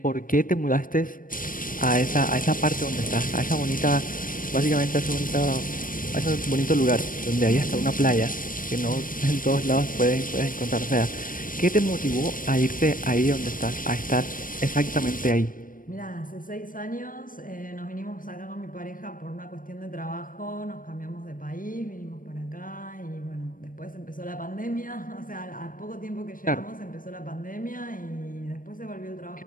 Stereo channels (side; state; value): right; late; 0.40 ms